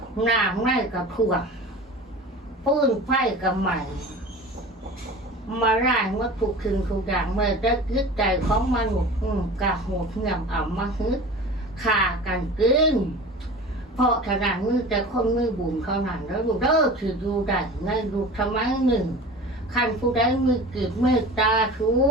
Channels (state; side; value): normal; both; correlation 0.37